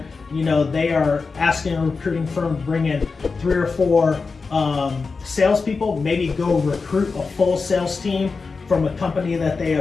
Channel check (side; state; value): right; quieter; 4.5 dB